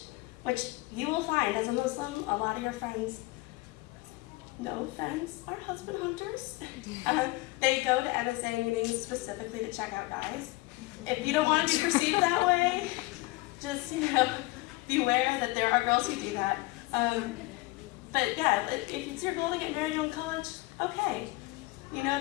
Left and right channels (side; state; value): right; quieter; 21.4 dB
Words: which you will find as a Muslim, a lot of your friends, no offense, are husband hunters. They go to MSA meetings specifically to check out guys. If you don't want to be perceived that way, just, you know, beware that there are girls who do that. But yeah, if it's your goal to get married in college, okay. You know